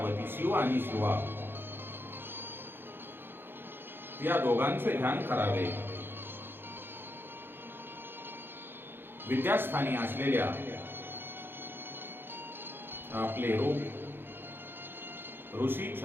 शिव आणि शिवा या दोघांचे ध्यान करावे. विद्यास्थानी असलेल्या आपले रूप, ऋषी,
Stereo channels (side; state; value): left; late; 0.10 ms